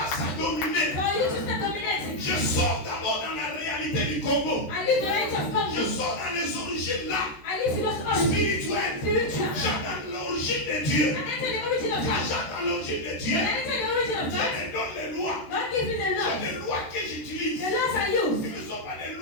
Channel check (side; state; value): right; late; 13 ms